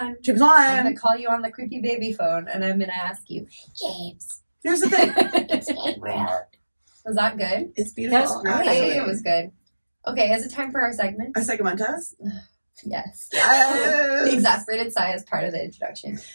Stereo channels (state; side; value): inverted; both; correlation -1.00